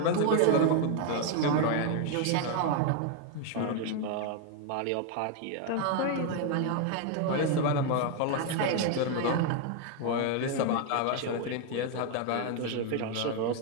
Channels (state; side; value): different; both; correlation 0.01